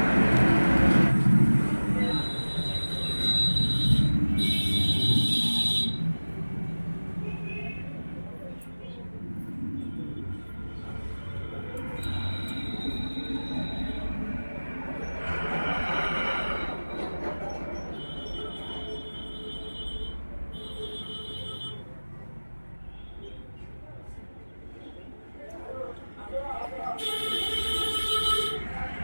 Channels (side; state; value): both; inverted; correlation -1.00